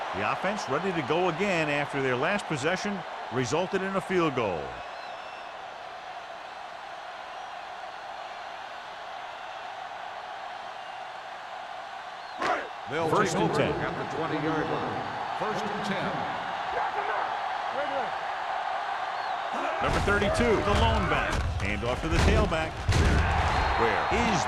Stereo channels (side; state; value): both; identical; correlation 1.00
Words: The offense ready to go again after their last possession resulted in a field goal. They'll First take and over 10. at the 20-yard line. First and 10. Number 32, the lone back. Hand off to the tailback. Where is